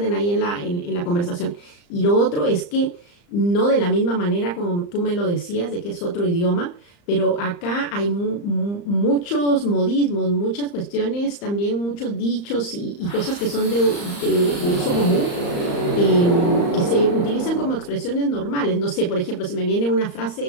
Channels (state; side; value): late; right; 35 ms